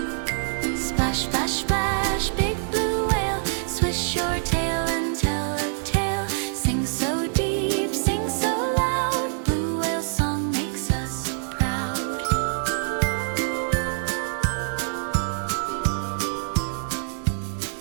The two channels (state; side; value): silent; left; digital silence